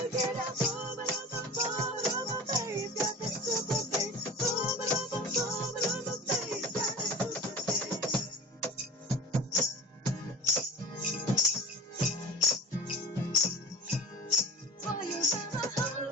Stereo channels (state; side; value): normal; both; correlation 0.38